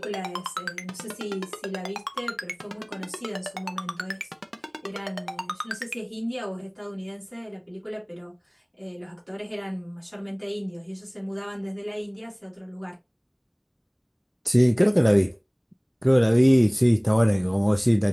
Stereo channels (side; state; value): both; identical; correlation 1.00